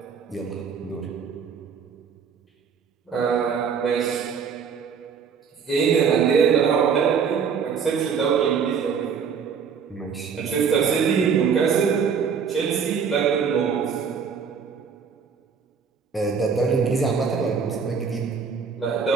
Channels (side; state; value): left; quieter; 6.4 dB